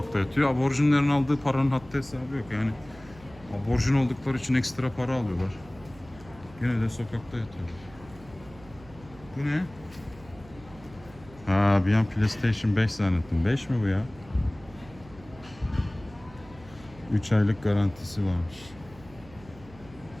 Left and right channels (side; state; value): right; noise; hum, 21 dB below the sound